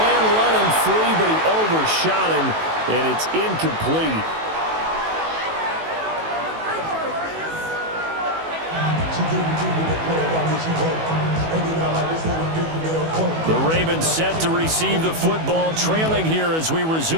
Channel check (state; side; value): late; left; 18 ms